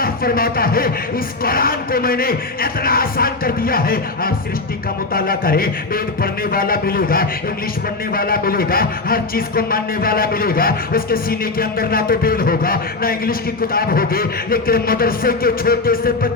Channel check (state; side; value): quieter; right; 3.5 dB